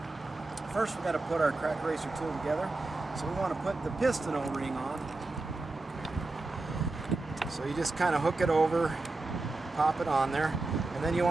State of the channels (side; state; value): left; quieter; 3.2 dB